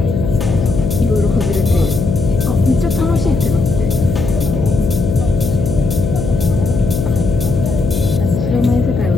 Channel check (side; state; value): left; noise; hum, 3 dB below the sound